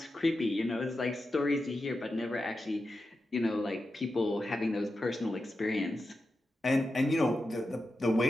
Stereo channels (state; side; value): normal; both; correlation 0.90